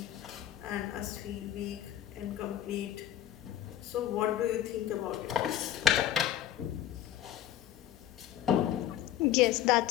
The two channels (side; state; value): right; quieter; 11.6 dB